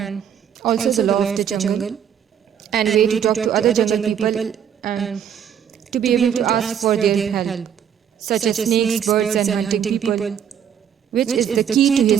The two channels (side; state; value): left; quieter; 8.7 dB